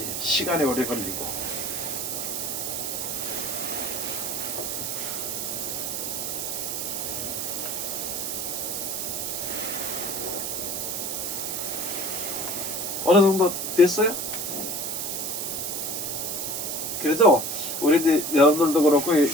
시간이 오래 걸리고. 어느 정도 됐어요? 그래도 우리 여러분들도 그렇고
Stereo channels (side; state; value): right; noise; hiss, 2 dB below the sound